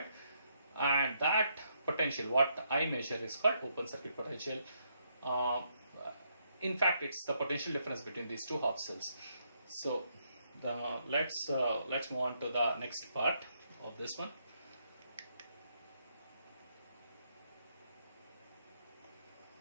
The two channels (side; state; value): both; inverted; correlation -0.76